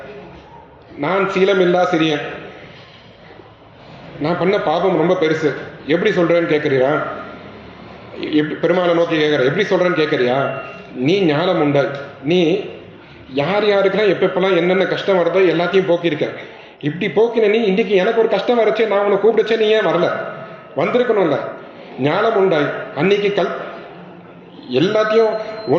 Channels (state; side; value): identical; both; correlation 1.00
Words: நான் சீலமில்லா சிறியன், நான் பண்ண பாபம் ரொம்ப பெருசு, எப்படி சொல்றேன்னு கேட்குறியா? பெருமாளை நோக்கி கேட்குற, எப்படி சொல்றேன்னு கேட்குறியா? நீ ஞானம் உண்டாய், நீ யார் யாருக்கெல்லாம் எப்பெல்லாம் என்னென்ன கஷ்டம் வருதோ எல்லாத்தையும் போக்கியிருக்க. இப்படி போக்கின நீ இன்னைக்கு எனக்கு ஒரு கஷ்டம் வரச்சே, நான் உன்னை கூப்பிடுச்சே, நீ ஏன் வரல? வந்திருக்கணும்ல. ஞானம் உண்டாய் அன்னைக்கு எல்லாத்தையும்